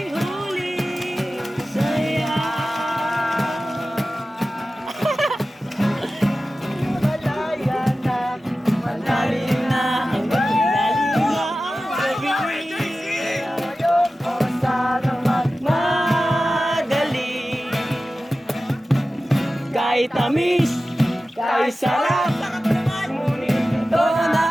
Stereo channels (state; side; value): normal; both; correlation 0.95